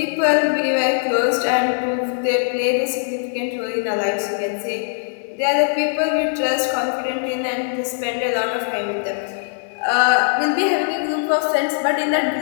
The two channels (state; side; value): silent; right; 58 dB below the other